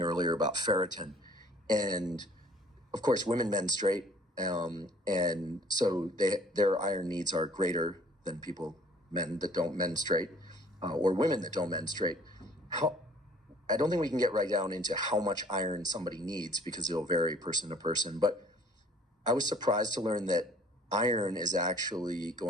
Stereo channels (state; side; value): normal; both; correlation 0.55